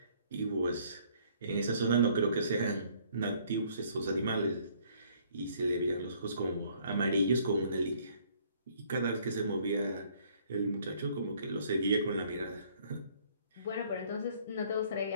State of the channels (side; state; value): both; inverted; correlation -0.61